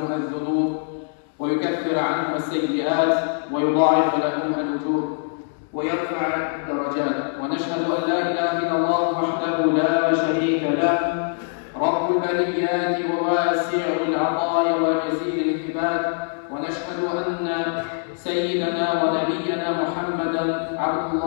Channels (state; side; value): silent; right; digital silence